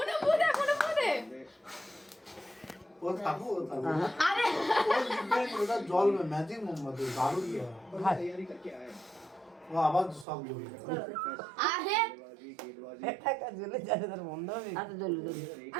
কোন পুদে ও থামো আরে ও লিখবে ওটা জল में ম্যাজিক মোমবাতি দারুণ কি হয় ও আবার সব জল আরে টাকা জ্বলে যাবে তার বন্ধ হবে আচ্ছা জ্বলে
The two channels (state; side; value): drops out; left; at 10.2 s